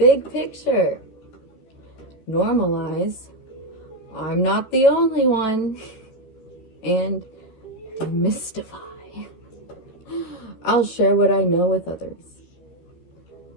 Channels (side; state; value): right; late; 13 ms